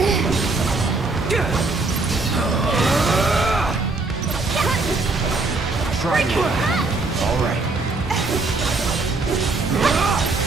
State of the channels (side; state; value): left; quieter; 3.6 dB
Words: Try me. All right.